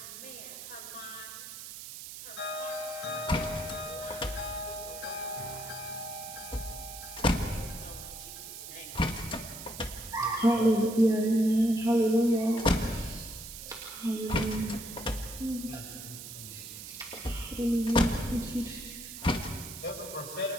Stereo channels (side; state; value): right; noise; hiss, 11 dB below the sound